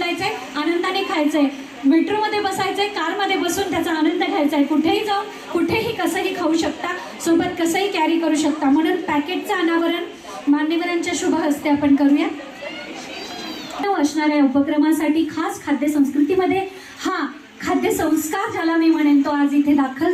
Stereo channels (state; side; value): identical; both; correlation 1.00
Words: आनंदाने खायचंय, मेट्रोमध्ये बसायचंय, कारमध्ये बसून त्याचा आनंद घ्यायचा आहे. कुठेही जाऊन कुठेही कसंही खाऊ शकता, सोबत कसंही कॅरी करू शकता. म्हणून पॅकेटचं अनावरण मान्यवरांच्या शुभ हस्ते आपण करूया. असणाऱ्या उपक्रमासाठी खास खाद्य संस्कृतीमध्ये हा खाद्य संस्कार ज्याला मी म्हणेन तो आज इथे दाखल